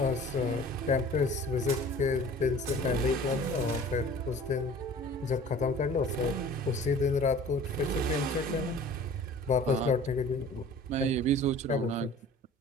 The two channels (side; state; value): both; normal; correlation 0.45